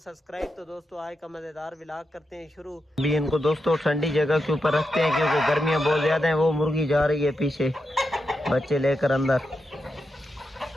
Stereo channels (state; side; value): normal; both; correlation 0.87